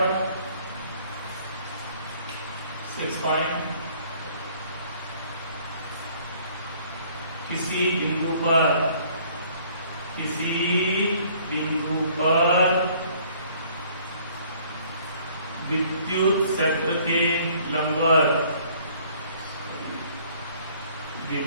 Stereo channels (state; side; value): inverted; both; correlation -0.58